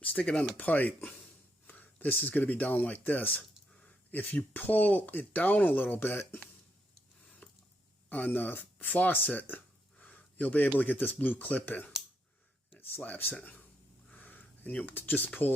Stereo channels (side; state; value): both; normal; correlation 0.78